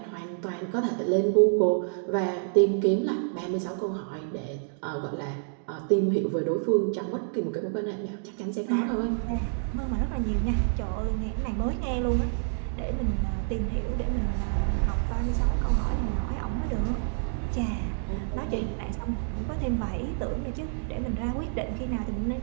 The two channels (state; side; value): silent; left; digital silence